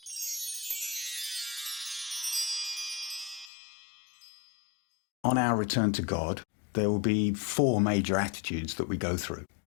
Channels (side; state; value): right; drops out; at 3.5 s